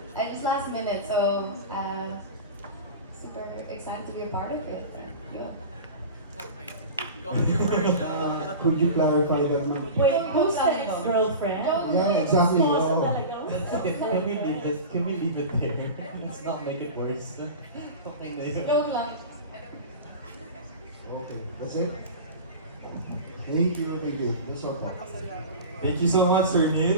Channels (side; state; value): both; inverted; correlation -0.31